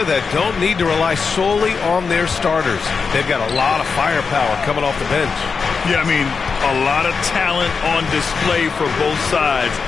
that don't need to rely solely on their starters. They've got a lot of firepower coming off the bench. Yeah, I mean, a lot of talent on display for both sides.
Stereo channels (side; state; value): right; quieter; 5.2 dB